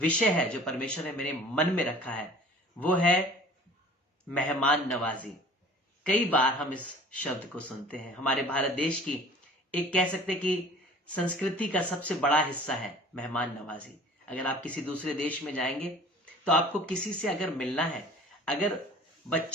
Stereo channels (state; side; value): normal; both; correlation 0.47